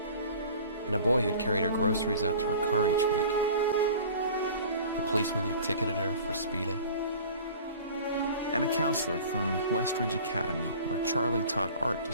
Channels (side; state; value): both; inverted; correlation -0.43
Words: and a boy who'd carried her groceries out to her car each week. The policeman who ticketed her for speeding. And a counselor from Westridge Academy, where Charlie taught art to